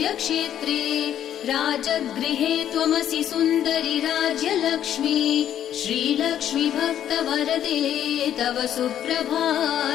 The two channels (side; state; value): right; quieter; 10.5 dB